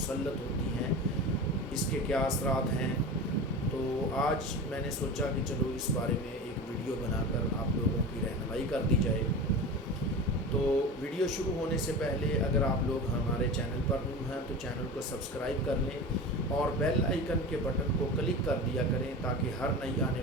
होती हैं, इसके क्या असरात हैं। तो आज मैंने सोचा कि चलो इस बारे में एक वीडियो बनाकर आप लोगों की रहनुमाई कर दी जाए। तो वीडियो शुरू होने से पहले अगर आप लोग हमारे चैनल पर न्यू हैं तो चैनल को सब्सक्राइब कर लें और बेल आइकन के बटन को क्लिक कर दिया करें ताकि हर नई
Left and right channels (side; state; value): both; normal; correlation 0.30